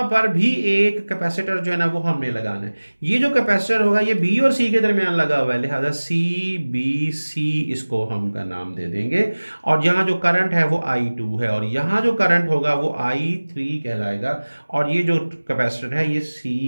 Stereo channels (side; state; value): both; inverted; correlation -1.00